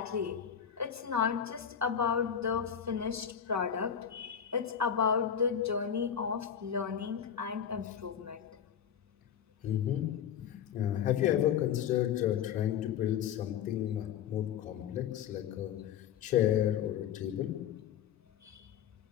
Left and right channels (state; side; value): quieter; right; 8.6 dB